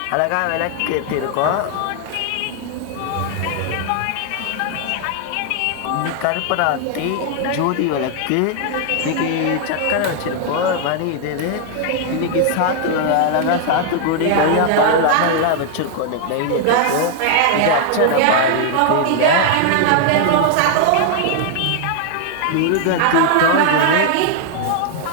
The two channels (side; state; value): both; different; correlation 0.00